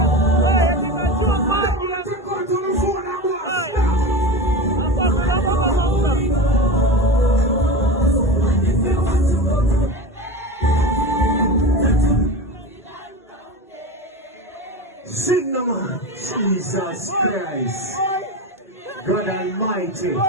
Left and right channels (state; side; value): normal; both; correlation 0.26